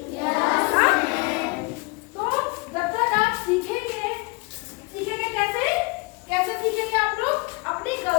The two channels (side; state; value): right; quieter; 27.8 dB